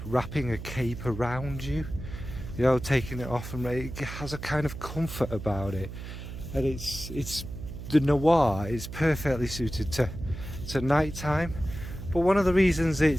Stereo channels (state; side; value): noise; right; hum, 10 dB below the sound